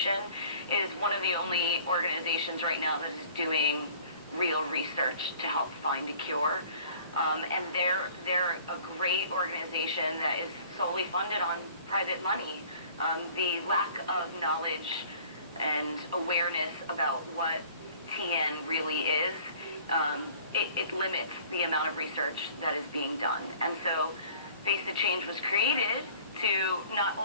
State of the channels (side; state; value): both; inverted; correlation -0.51